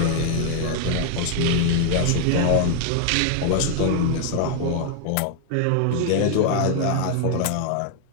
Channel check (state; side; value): different; both; correlation 0.00